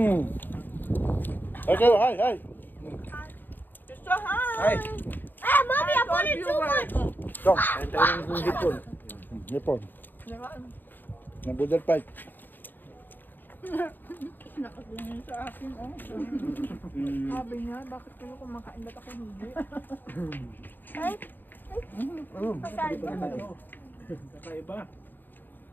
Okay, hi. Sister, hi! Ay, Ah, mommy, I put it too much. Ito, kain tayo ng hipon. nipon. Ng budal fight. Nakatingin sa akin, oh. Sabi niya, bakit kayo kumakain ba't ako hindi? Ay, Kakaiba.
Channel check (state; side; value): late; right; 0.091 ms